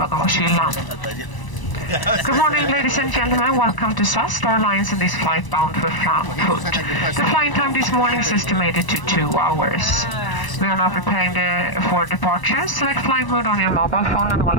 Good morning, ladies and gentlemen. Welcome to SAS, Star Alliance, and this flight bound for Frankfurt. The flying time this morning is estimated to 2 hours. We are now preparing for departure. Select flight mode on your mobile phone and all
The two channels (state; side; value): late; right; 1.0 ms